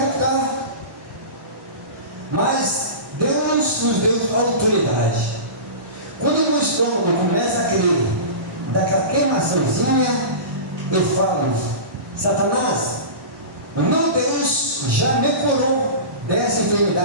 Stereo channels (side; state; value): left; late; 1.1 ms